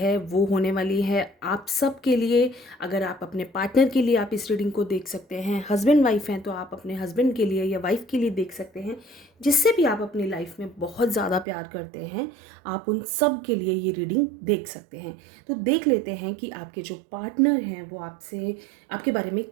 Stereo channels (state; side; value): drops out; left; at 11.5 s